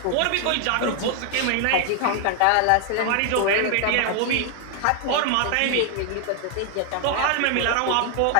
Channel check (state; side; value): different; both; correlation 0.00